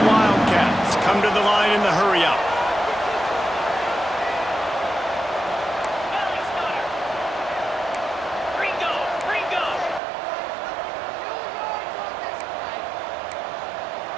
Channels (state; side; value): drops out; left; at 10.0 s